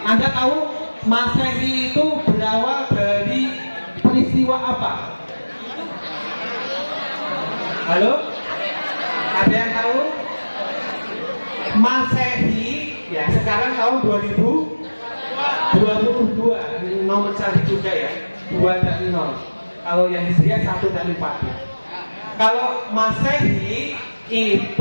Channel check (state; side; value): inverted; both; correlation -1.00